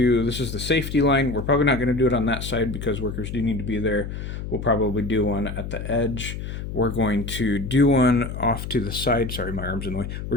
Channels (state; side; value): noise; left; hum, 7 dB below the sound